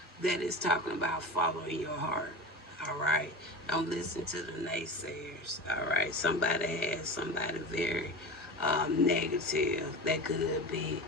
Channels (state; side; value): normal; both; correlation 0.28